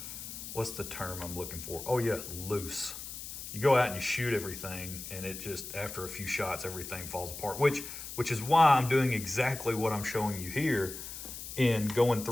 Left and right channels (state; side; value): noise; left; hiss, 10 dB below the sound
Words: what's the term I'm looking for? Oh yeah, loose. You go out and you shoot everything, and it just, after a few shots, everything falls apart, which is why I'm doing exactly what I'm showing you here, in going